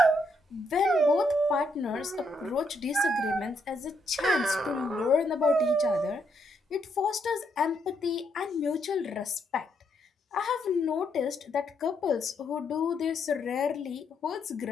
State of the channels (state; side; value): normal; both; correlation 0.76